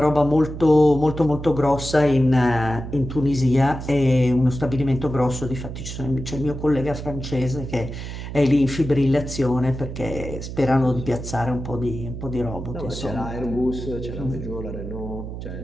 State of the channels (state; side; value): noise; right; hum, 8 dB below the sound